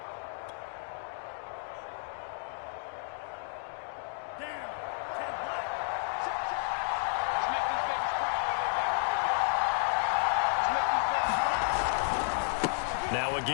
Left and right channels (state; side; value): silent; right; digital silence